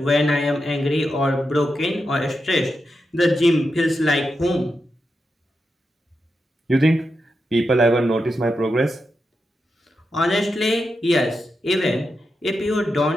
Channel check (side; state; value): both; normal; correlation 0.87